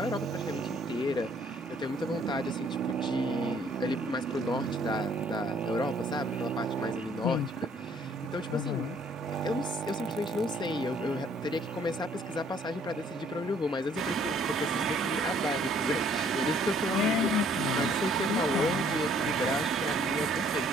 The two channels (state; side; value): normal; both; correlation 0.62